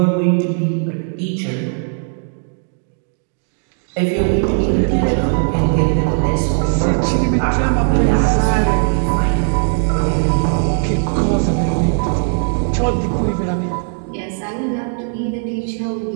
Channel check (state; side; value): silent; left; 59 dB below the other